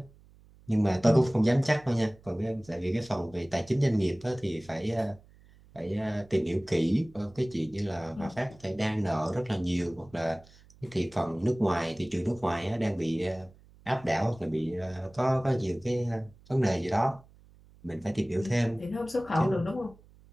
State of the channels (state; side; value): noise; right; hum, 26 dB below the sound